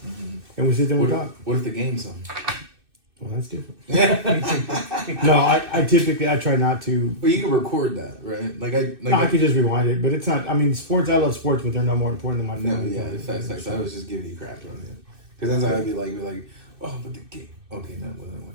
And we sit there and we talk. What if the game's on? Well, that's different. No, I typically try not to. Well, you can record that, right? I could just rewind it, but it's not. I mean, sports. I love sports, but they're no more important than my family. No, yeah, facts. I was just giving you crap on it, because that's how I'd be like, oh, but the game. Okay, no,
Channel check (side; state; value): left; late; 2.6 ms